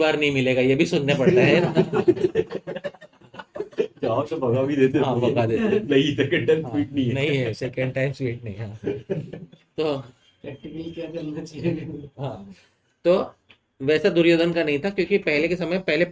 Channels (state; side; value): identical; both; correlation 1.00